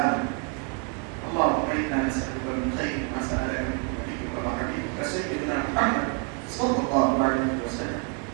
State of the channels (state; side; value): quieter; left; 34.8 dB